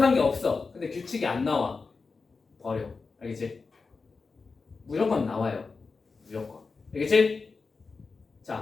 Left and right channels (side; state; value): right; quieter; 4.5 dB